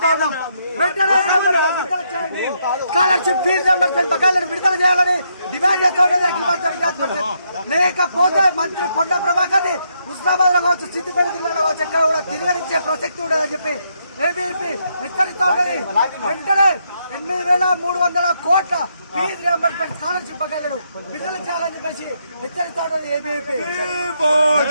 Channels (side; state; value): both; inverted; correlation -0.77